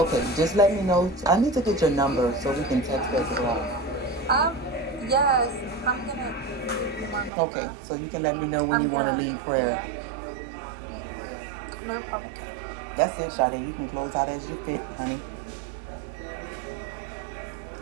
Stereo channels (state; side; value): drops out; left; at 7.3 s